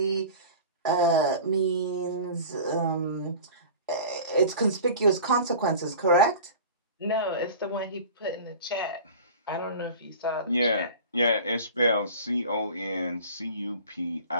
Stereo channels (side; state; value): both; inverted; correlation -0.39